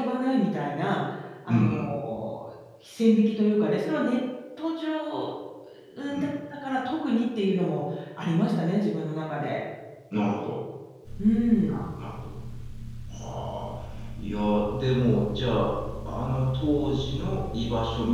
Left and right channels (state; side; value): identical; both; correlation 1.00